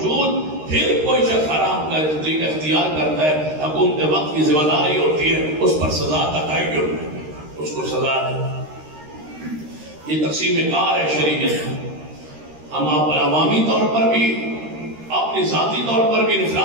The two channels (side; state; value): left; late; 13 ms